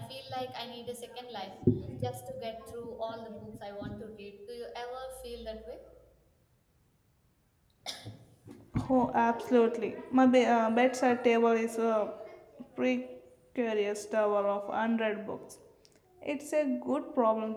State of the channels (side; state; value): both; identical; correlation 1.00